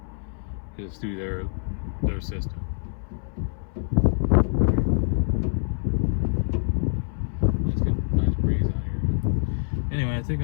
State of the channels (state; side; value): silent; right; 61 dB below the other